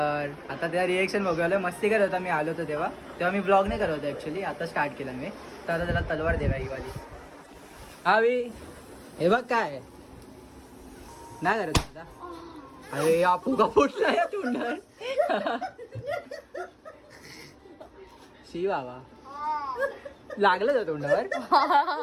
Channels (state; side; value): identical; both; correlation 1.00